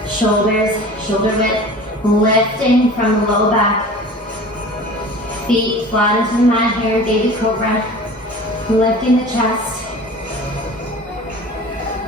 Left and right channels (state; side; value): normal; both; correlation 0.40